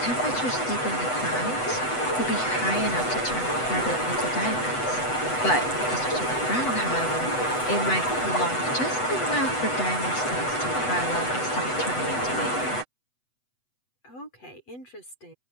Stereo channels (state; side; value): late; right; 8.0 ms